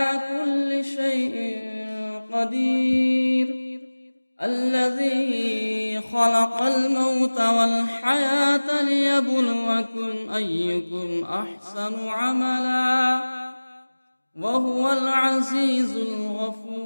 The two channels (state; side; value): inverted; both; correlation -1.00